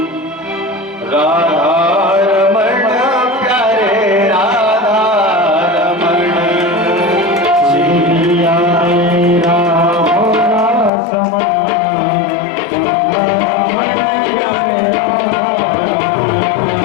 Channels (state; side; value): drops out; right; at 10.9 s